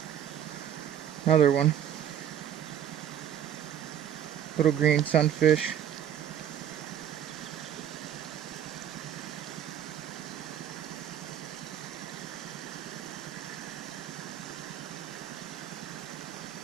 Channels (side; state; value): left; quieter; 10.0 dB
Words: Another one. Little green sunfish.